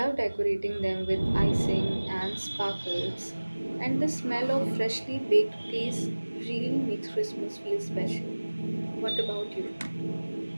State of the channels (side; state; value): both; inverted; correlation -1.00